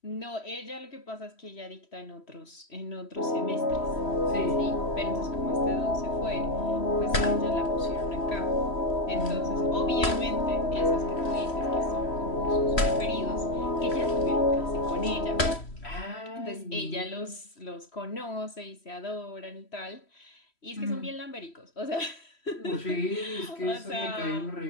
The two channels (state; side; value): late; right; 3.1 ms